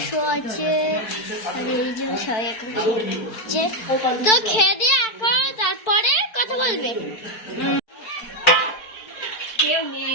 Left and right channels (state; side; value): late; right; 4.6 ms